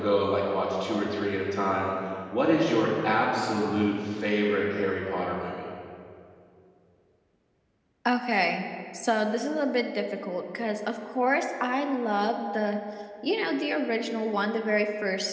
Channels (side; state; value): both; identical; correlation 1.00